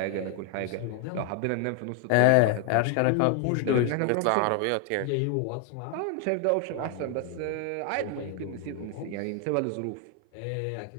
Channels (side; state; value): both; different; correlation 0.01